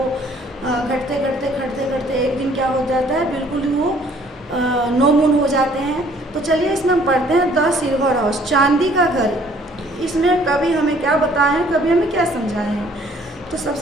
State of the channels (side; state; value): both; normal; correlation 0.59